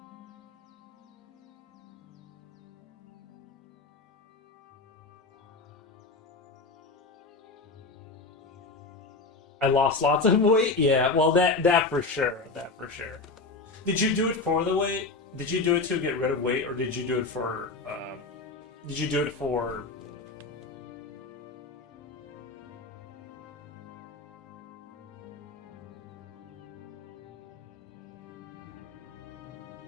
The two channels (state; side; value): quieter; right; 3.8 dB